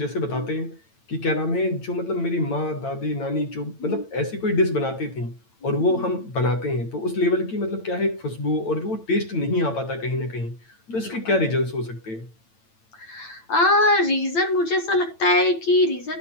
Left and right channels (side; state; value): right; late; 8.9 ms